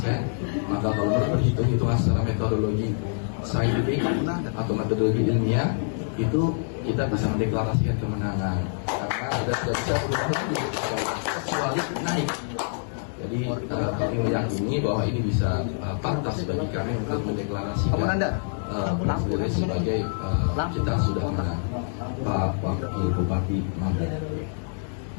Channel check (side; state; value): right; silent; digital silence